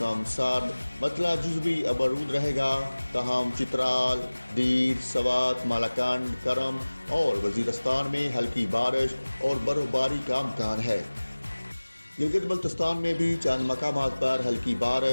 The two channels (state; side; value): inverted; both; correlation -1.00